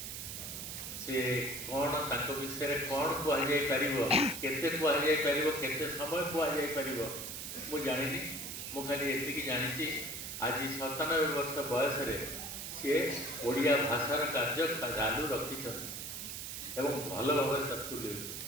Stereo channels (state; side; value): noise; right; hiss, 6 dB below the sound